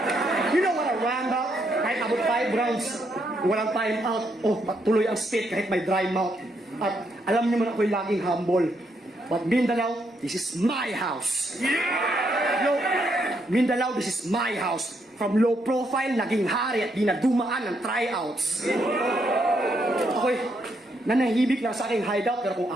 You know what a roundabout? Kahit about 5 rounds, walang time out. Patuloy ang spit kahit may dry mouth. At alam niyo man ako'y laging humble. But Mindanao, this is my house. No, Mindanao, this is my house. From low profile, naging hari at di na dumaan ng tryouts. Ako'y nanahibik lang sa aking hideout, pero kung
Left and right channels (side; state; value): both; normal; correlation 0.76